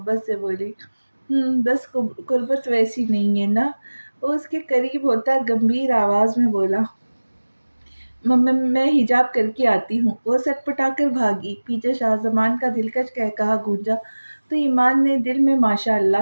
سے بولی۔ بس قربت ویسی نہیں ہے نا؟ وہ اس کے قریب ہوتا گمبھیر آواز میں بولا۔ میں حجاب کر کے آتی ہوں۔ وہ سٹ پٹا کر بھاگی۔ پیچھے شاہ زمان کا دلکش قہقہا گونجا تو ایمان نے دل میں ماشاء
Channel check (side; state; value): both; inverted; correlation -1.00